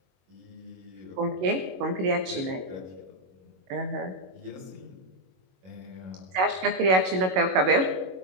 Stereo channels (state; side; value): late; left; 22 ms